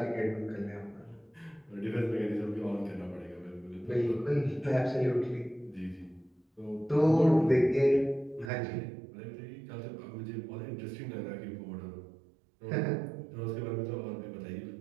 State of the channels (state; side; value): drops out; left; at 8.5 s